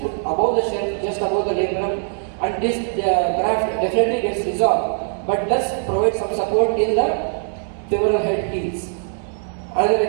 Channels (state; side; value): silent; left; digital silence